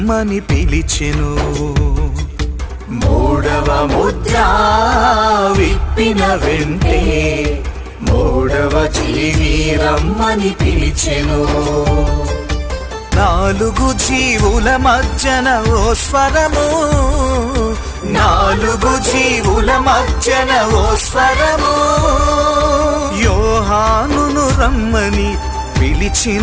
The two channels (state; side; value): identical; both; correlation 1.00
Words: పిలిచెను. మూడవ ముద్ర విప్పిన వెంటే మూడవ జీవి రమ్మని పిలిచెను. నాలుగు జీవుల మధ్యన ఓ స్వరము, నాలుగు జీవుల మధ్యన ఓ స్వరము, యోహానును రమ్మని